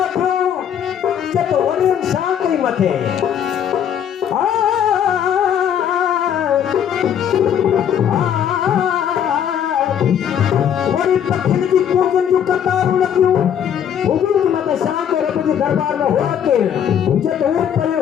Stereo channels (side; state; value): right; quieter; 9.0 dB